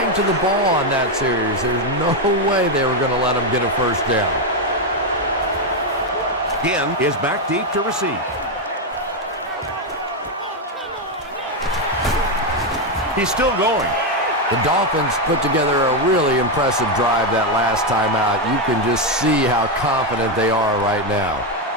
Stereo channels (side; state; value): both; normal; correlation 0.06